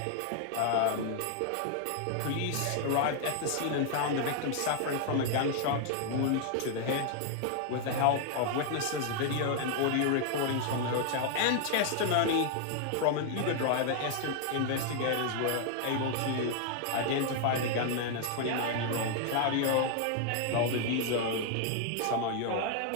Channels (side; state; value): both; different; correlation 0.00